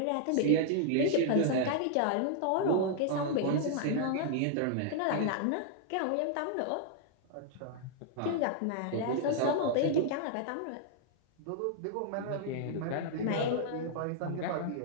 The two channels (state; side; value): different; both; correlation -0.01